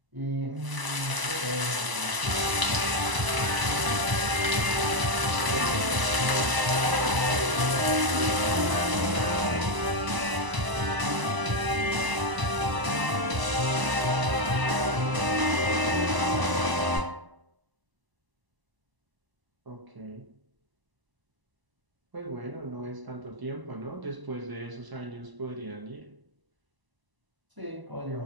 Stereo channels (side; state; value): left; late; 1.0 ms